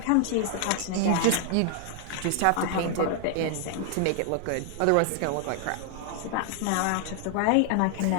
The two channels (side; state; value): both; different; correlation 0.00